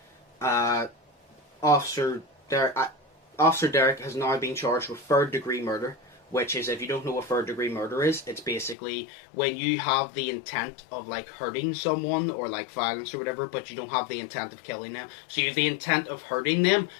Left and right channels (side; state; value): right; drops out; at 8.8 s